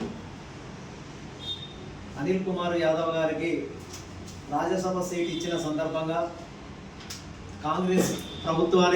అనిల్ కుమార్ యాదవ్ గారికి రాజ్యసభ సీట్ ఇచ్చిన సందర్భంగా కాంగ్రెస్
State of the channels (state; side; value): identical; both; correlation 1.00